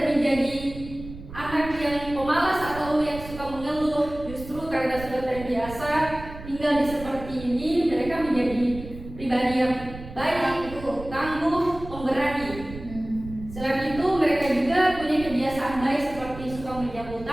menjadi anak yang pemalas atau yang suka mengeluh. Justru karena sudah terbiasa tinggal di seperti ini, mereka menjadi pribadi yang baik, tangguh, pemberani. Selain itu, mereka juga punya kebiasaan baik seperti suka menyambut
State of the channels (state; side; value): noise; right; rumble, 13 dB below the sound